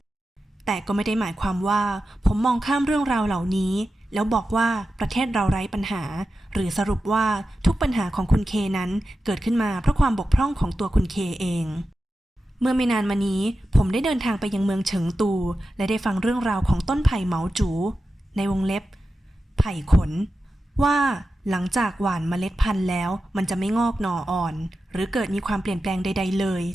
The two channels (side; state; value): both; normal; correlation 0.92